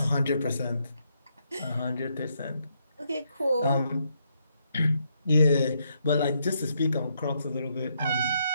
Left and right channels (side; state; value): both; inverted; correlation -0.77